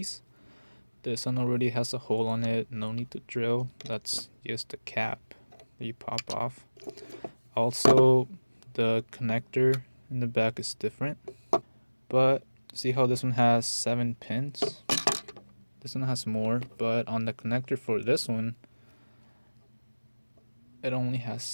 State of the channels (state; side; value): inverted; both; correlation -1.00